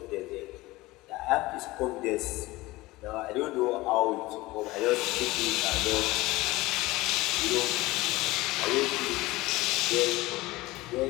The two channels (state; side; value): quieter; right; 19.8 dB